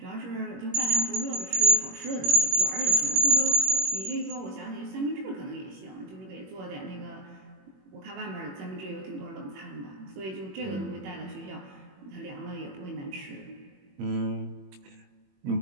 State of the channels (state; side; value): late; left; 21 ms